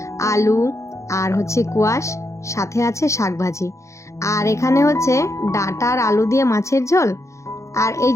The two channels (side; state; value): right; late; 0.14 ms